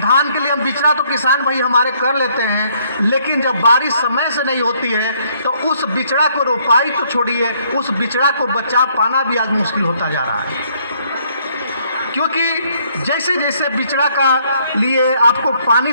के लिए हम बिचड़ा तो किसान भाई हमारे कर लेते हैं, लेकिन जब बारिश समय से नहीं होती है तो उस बिचड़ा को रोपाई तो छोड़िए, उस बिचड़ा को बचा पाना भी आज मुश्किल होता जा रहा है। क्योंकि जैसे जैसे बिचड़ा का लिए आपको पानी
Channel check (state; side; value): inverted; both; correlation -0.67